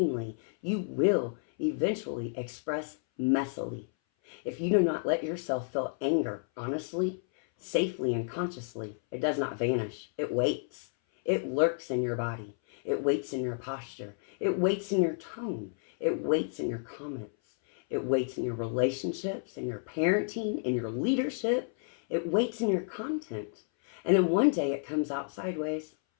you will eventually express messily. If you do not let yourself feel anger honestly, safely, and consciously, it does not vanish. It waits. It lurks in your body. It waits in your posture. It waits in your tone. It waits in your comments. It waits in your relationships, in your parenting, in your leadership. It waits in your content. And then one day it comes out sideways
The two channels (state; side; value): silent; right; 57 dB below the other